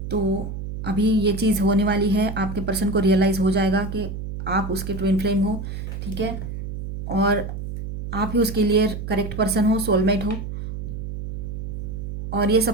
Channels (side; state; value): right; noise; hum, 7 dB below the sound